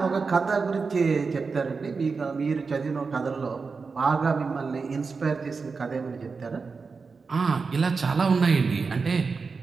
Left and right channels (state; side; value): quieter; left; 4.7 dB